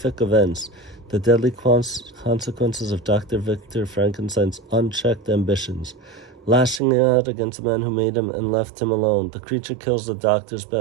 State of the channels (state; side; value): drops out; left; at 6.8 s